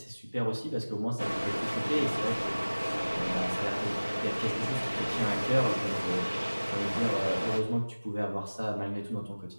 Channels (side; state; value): both; inverted; correlation -1.00